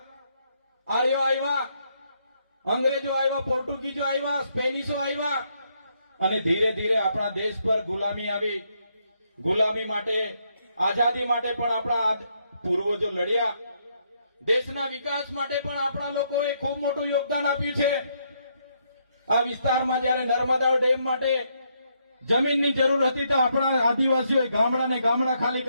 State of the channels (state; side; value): inverted; both; correlation -0.75